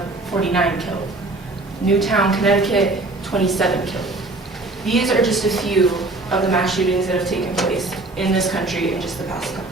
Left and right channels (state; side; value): quieter; left; 3.0 dB